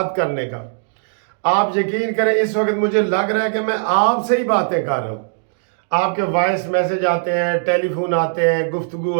करने का। आप यकीन करें इस वक्त मुझे लग रहा है कि मैं आपसे ही बातें कर रहा हूँ। आपके वॉइस मैसेज आते हैं, टेलीफोन आते हैं, गुफ्तगू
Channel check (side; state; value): left; silent; digital silence